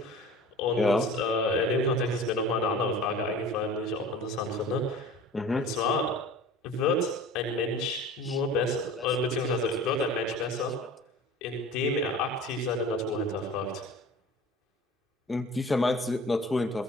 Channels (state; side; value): normal; both; correlation 0.41